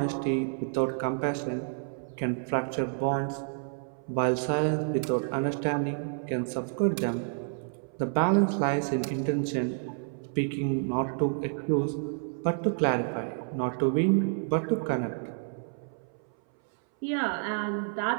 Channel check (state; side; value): silent; left; 58 dB below the other